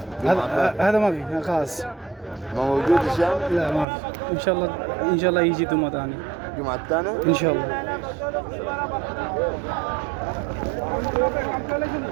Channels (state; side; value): drops out; left; at 3.9 s